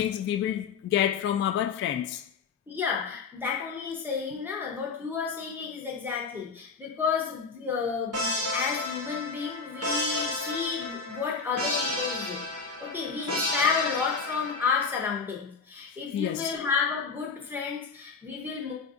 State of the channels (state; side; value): quieter; right; 5.3 dB